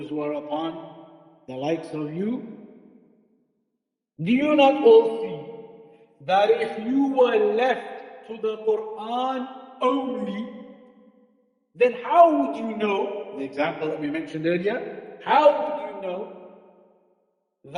who are upon the likes of you, do you not all see that if you were left to the Quran only, then how would you know, the example that we mentioned earlier, how would you know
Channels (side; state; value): both; identical; correlation 1.00